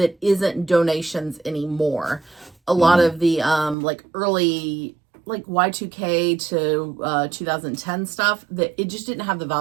isn't donations anymore. A lot of the early Y2K to 2010 stuff, that it just didn't have the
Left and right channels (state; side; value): drops out; left; at 3.8 s